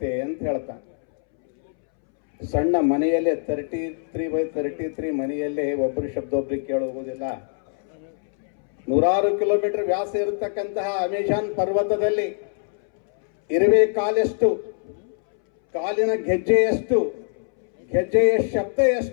ಅಂತ ಹೇಳ್ತಾನೆ. ಸಣ್ಣ ಮನೆಯಲ್ಲೇ 33x33 ಮನೆಯಲ್ಲೇ ಒಬ್ಬರು ಶಬ್ದ ಒಬ್ರಿಗೆ ಕೇಳಿ ಹೋಗೋದಿಲ್ಲ. 100 ಕಿಲೋಮೀಟರ್ ವ್ಯಾಸ ಇರತಕ್ಕಂತಹ ಅಮೆಜಾನ್ ಪರ್ವತದಲ್ಲಿ ಇರುವೆ ಕಾಲೆಷ್ಟು, ಕಾಲಿನ ಗೆಜ್ಜೆಯಷ್ಟು, ಗೆಜ್ಜೆಯ ಶಬ್ದ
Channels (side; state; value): right; silent; 63 dB below the other